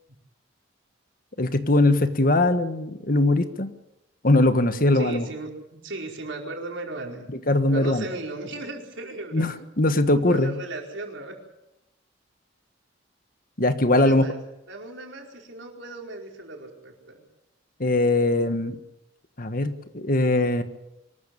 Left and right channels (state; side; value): normal; both; correlation 0.45